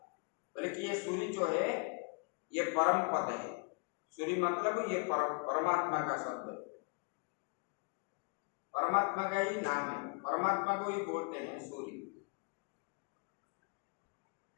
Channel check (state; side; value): quieter; right; 33.3 dB